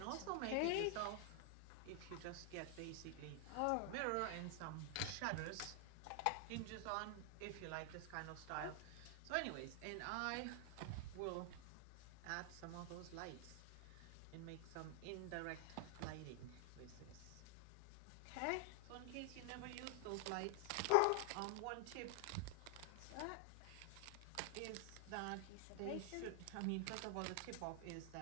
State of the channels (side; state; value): both; different; correlation 0.00